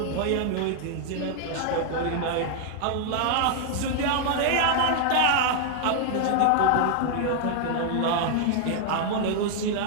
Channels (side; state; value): both; different; correlation 0.00